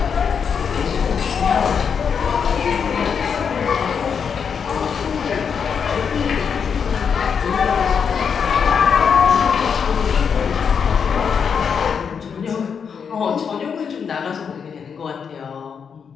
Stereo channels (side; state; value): right; quieter; 6.7 dB